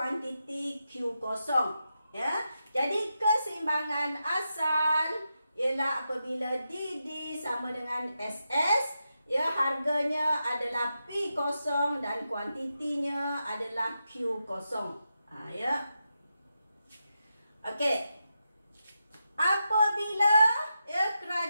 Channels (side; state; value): both; inverted; correlation -0.87